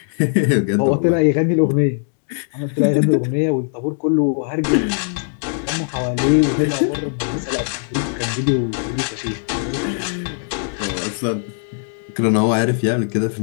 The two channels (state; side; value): silent; right; 66 dB below the other